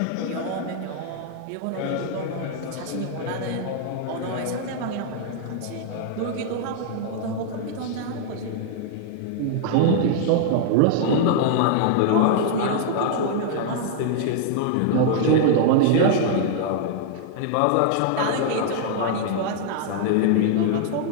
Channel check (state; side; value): different; both; correlation -0.01